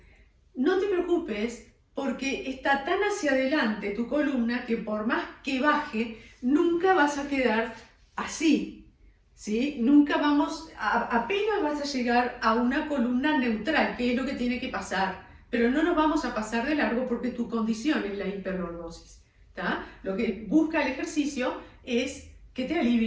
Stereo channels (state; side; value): identical; both; correlation 1.00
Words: No te preocupes porque está tan hacia adelante tu columna que por más que baje, nunca vas a quedar así. ¿Sí? Nunca apenas vas a llegar a una columna neutral, que es lo que tiene que pasar, pero no nos vamos a pasar de largo porque tu condición es la hiperlordosis. ¿Tá? Lo que busca el ejercicio es que te